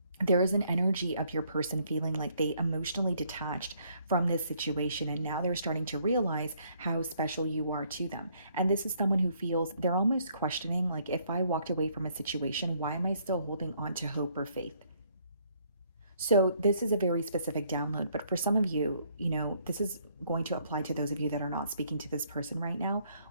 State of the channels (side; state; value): both; inverted; correlation -0.67